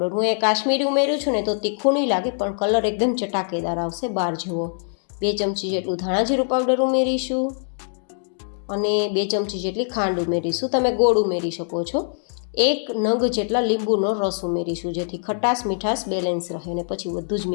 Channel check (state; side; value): silent; right; digital silence